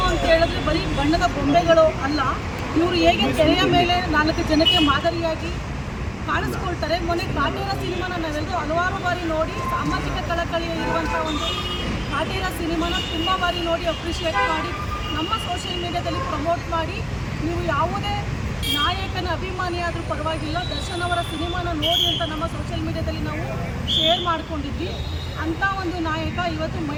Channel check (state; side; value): identical; both; correlation 1.00